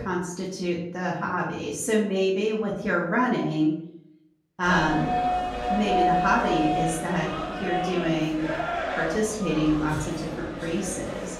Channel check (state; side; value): identical; both; correlation 1.00